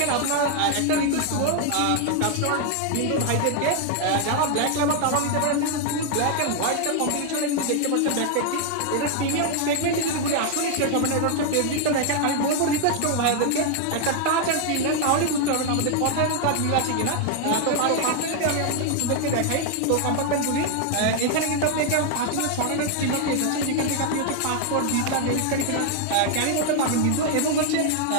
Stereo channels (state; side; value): different; both; correlation 0.00